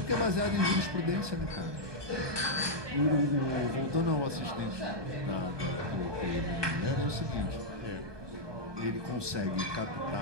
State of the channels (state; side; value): late; left; 1.2 ms